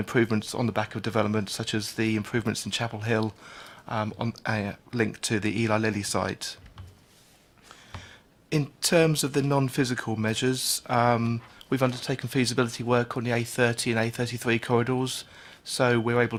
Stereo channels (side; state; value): both; identical; correlation 1.00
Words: on the back of development, such as the improvements in Chapel Hill, linked to the Eli Lilly site. In terms of the non-physical measures, we've undertaken feasibility work on the A30 and A33 corridors, so we're